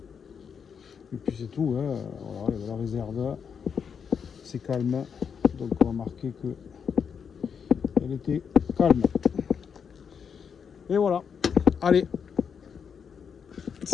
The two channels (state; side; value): quieter; right; 6.8 dB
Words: Et puis c'est tout. Hein. Voilà, il y a de la réserve. C'est calme. Donc on va marquer que elle était calme. Et voilà. Allez.